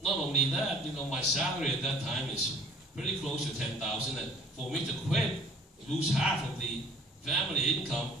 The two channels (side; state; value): both; normal; correlation 0.53